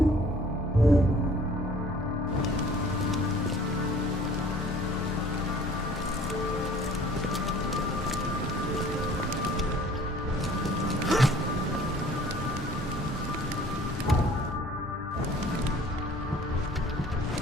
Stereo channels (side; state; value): both; normal; correlation 0.52